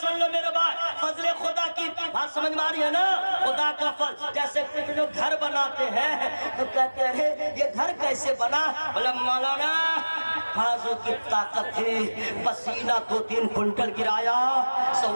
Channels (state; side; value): inverted; both; correlation -1.00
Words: لو میرے بھائی، فضل خدا کی بات سمجھ میں آ رہی ہے نا؟ خدا کا فضل، جیسے کچھ لوگ گھر بناتے ہیں تو کہتے ہیں یہ گھر کیسے بنا؟ بولے مولانا بازو کی طاقت تھی، پسینہ 2-3 کنٹل گرایا،